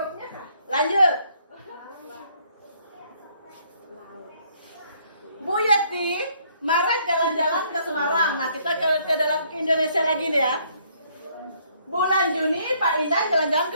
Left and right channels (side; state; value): both; inverted; correlation -0.66